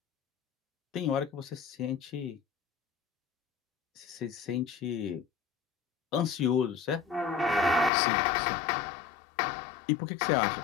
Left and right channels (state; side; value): drops out; right; at 7.9 s